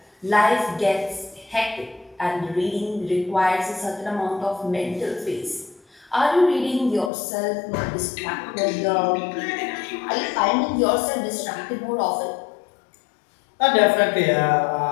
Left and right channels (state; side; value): drops out; right; at 7.1 s